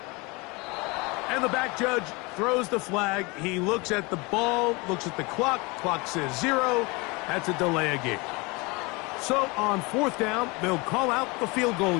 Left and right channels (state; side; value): quieter; right; 26.5 dB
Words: And the back judge throws the flag. He looks at the ball, looks at the clock. Clock says 0. That's a delay of game. So on 4th down, they'll call out the field goal